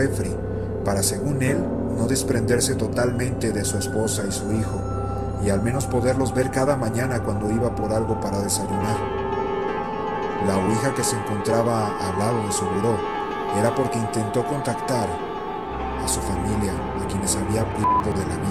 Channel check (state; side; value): identical; both; correlation 1.00